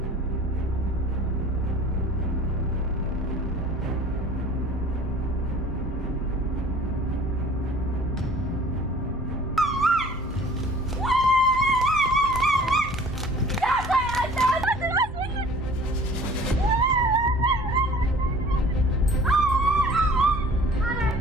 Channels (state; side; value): normal; both; correlation 0.48